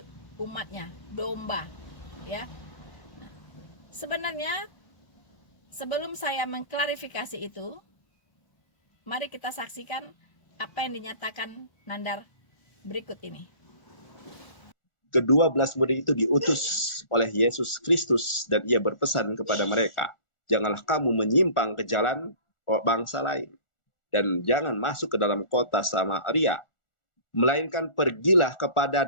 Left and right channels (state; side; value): late; right; 1.4 ms